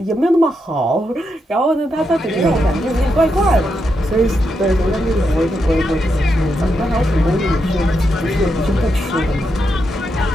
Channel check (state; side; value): normal; both; correlation 0.83